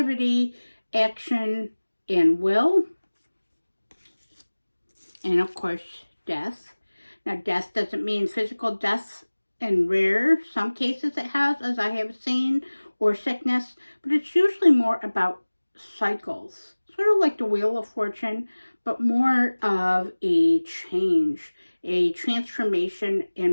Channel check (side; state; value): both; inverted; correlation -1.00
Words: action, and will. And of course, death. Now, death doesn't mean physical death. In some cases it has, as I have seen, or sickness, but it's usually more about cycles, sort of like the Wheel of Fortune, but more of a change, a transformation